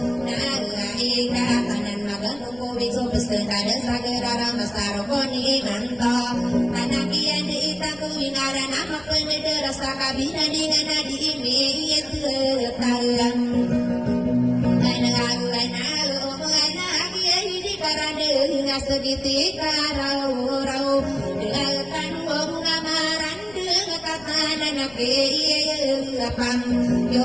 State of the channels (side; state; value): left; noise; rumble, 25 dB below the sound